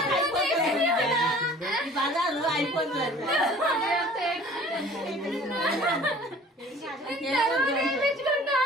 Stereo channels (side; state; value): both; normal; correlation 0.48